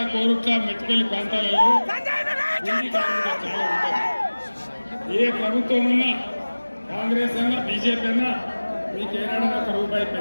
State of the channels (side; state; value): both; inverted; correlation -1.00